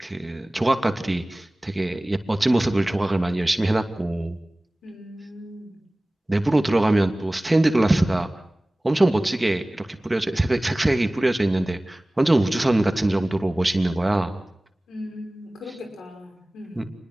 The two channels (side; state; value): both; normal; correlation 0.98